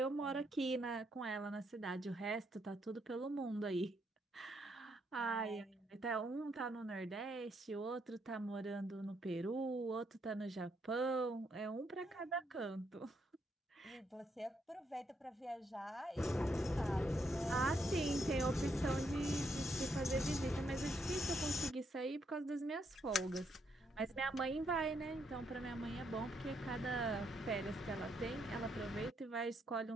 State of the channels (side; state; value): both; normal; correlation 0.76